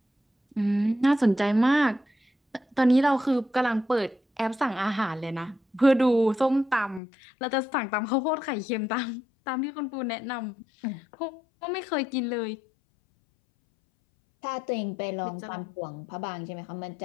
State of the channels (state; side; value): drops out; right; at 7.0 s